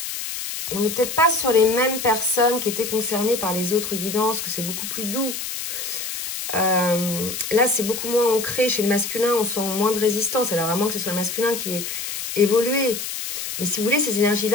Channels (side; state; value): left; noise; hiss, 5 dB below the sound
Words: on n'est peut-être pas sur les mêmes personnes qui étaient concernées par les autres guidances, que c'est beaucoup plus doux. Là, c'est beaucoup moins ancré chez le masculin, on sent moins de résistance. Alors, à moins que ce soit le masculin qui ait évolué. Mais si vous voulez, ces